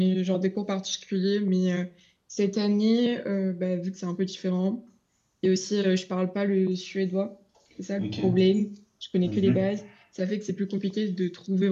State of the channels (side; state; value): both; identical; correlation 1.00